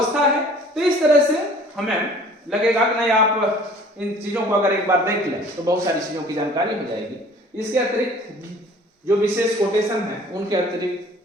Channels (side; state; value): both; normal; correlation 0.50